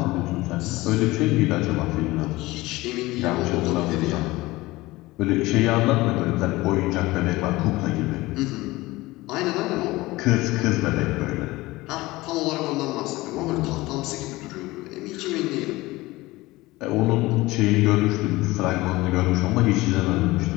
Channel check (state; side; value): quieter; right; 19.9 dB